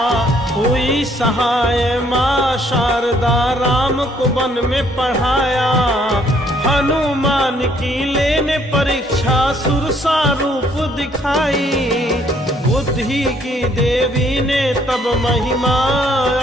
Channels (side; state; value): both; normal; correlation 0.65